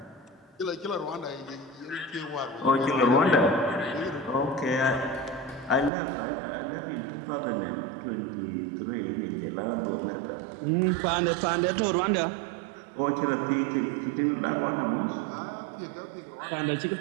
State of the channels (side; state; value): left; drops out; at 5.9 s